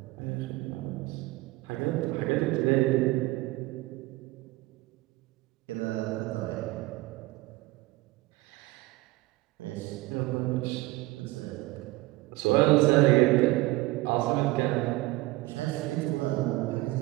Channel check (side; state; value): left; quieter; 20.0 dB